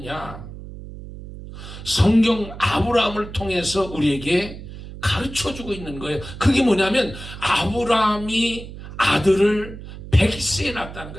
성경 아브라함을 통해서 우리에게 가르쳐주고 있는 거예요. 그게 뭐냐면 아브라함이 아들을 100세에 낳았다는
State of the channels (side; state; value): right; noise; hum, 13 dB below the sound